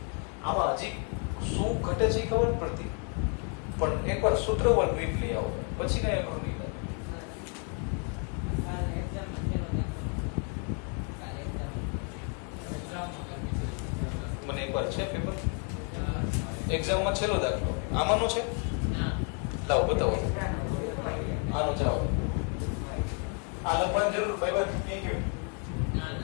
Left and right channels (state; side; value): quieter; right; 39.5 dB